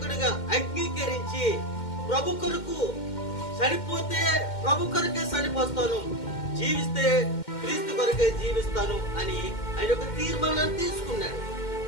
అంగీకరించి ప్రభు కొరకు చనిపోతే ప్రభు కొరకే చనిపోస్తాను, జీవిస్తే క్రీస్తు కొరకే జీవిస్తాను అని ఆయన ఒక తీర్మానాన్ని తీసుకున్నాడు.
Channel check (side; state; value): right; late; 2.1 ms